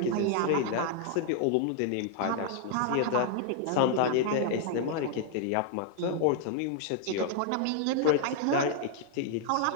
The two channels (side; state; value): both; different; correlation 0.00